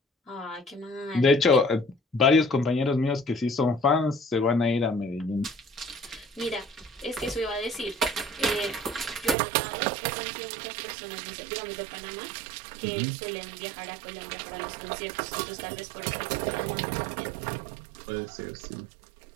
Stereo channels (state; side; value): drops out; left; at 9.3 s